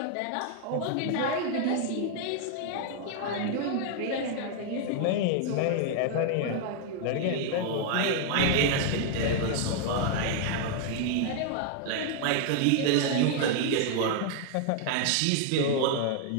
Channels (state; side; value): different; both; correlation 0.00